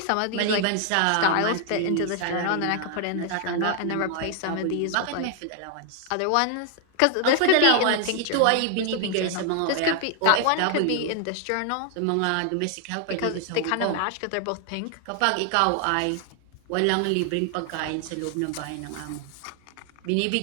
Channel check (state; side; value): different; both; correlation 0.00